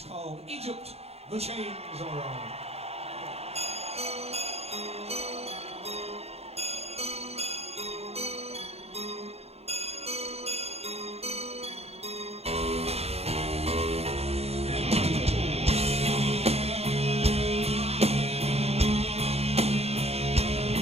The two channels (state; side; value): late; left; 0.30 ms